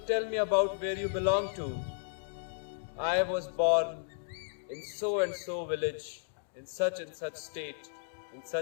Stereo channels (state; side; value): silent; right; digital silence